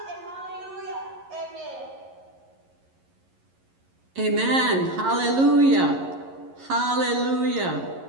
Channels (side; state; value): left; late; 11 ms